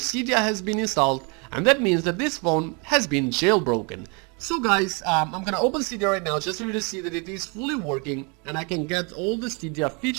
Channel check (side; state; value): left; quieter; 32.7 dB